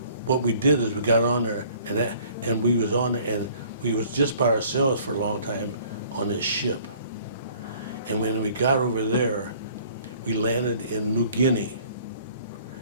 What we did is we got on there, and we was on there, and we was just by ourselves for a long time on this ship. And when we got over there, we landed in New Guinea,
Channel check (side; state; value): both; inverted; correlation -0.54